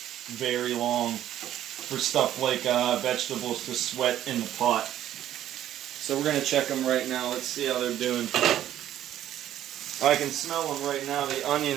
very long for stuff like vegetables to sweat in the pot. So we're going to check them right now. Let's see how they're doing. I can smell them right now. The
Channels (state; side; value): quieter; left; 11.9 dB